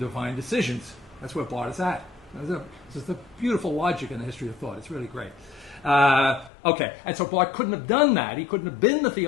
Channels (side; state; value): right; drops out; at 6.5 s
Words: decisions. That's where Barth is at. This is the beautiful logic in the history of thought. It's really great. Okay, and so Barth couldn't have done that. He couldn't have been the